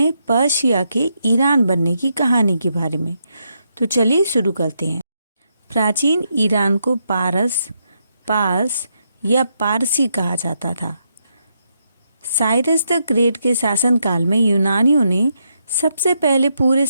पर्शिया के ईरान बनने की कहानी के बारे में। तो चलिए शुरू करते हैं। प्राचीन ईरान को पार्स या पारसी कहा जाता था। साइरस द ग्रेट के शासनकाल में यूनानियों ने सबसे पहले पूरे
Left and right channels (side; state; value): both; inverted; correlation -0.80